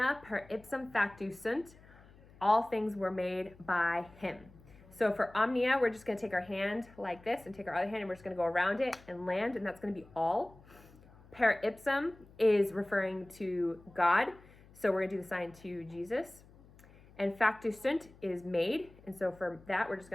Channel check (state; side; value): noise; left; hum, 24 dB below the sound